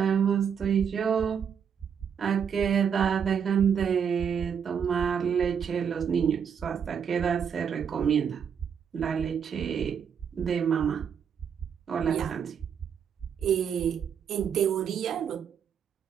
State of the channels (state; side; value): quieter; left; 7.5 dB